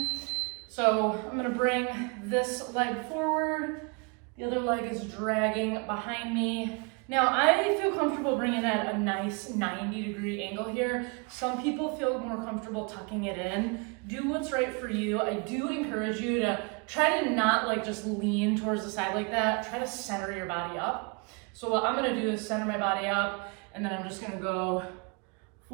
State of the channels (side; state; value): left; quieter; 33.0 dB